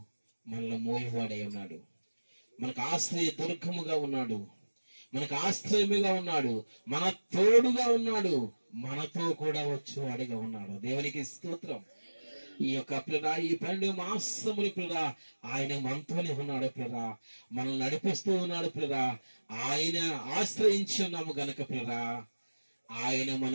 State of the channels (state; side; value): inverted; both; correlation -1.00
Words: మనల్ని మోయేవాడై ఉన్నాడు. మనకు ఆశ్రయ దుర్గముగా ఉన్నాడు, మనకు ఆశ్రయముగా ఉన్నాడు, మన తోడుగా ఉన్నాడు, మనతో కూడా వచ్చేవాడిగా ఉన్నాడు. దేవునికి స్తోత్రం. ఈ యొక్క పిల్ల ఈ 12 మాసములు పిల్ల ఆయన మనతోనే ఉన్నాడు పిల్ల, మనల్ని నడిపిస్తూ ఉన్నాడు పిల్ల. ఆయన ఆశ్రయించి ఉన్నాము గనక పిల్ల ఆయన